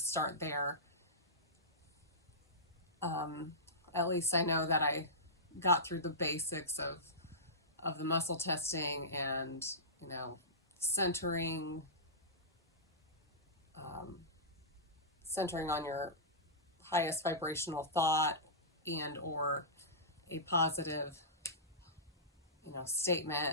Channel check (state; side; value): normal; both; correlation -0.18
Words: start there. Um, at least I know that I got through the basics of the muscle testing and, centering, um, centering on your highest vibrational thought and or a positive,